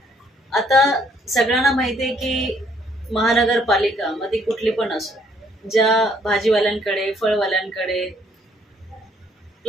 आता सगळ्यांना माहिती आहे की महानगरपालिका मध्ये कुठली पण असो, ज्या भाजीवाल्यांकडे फळवाल्यांकडे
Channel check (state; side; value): normal; both; correlation 0.66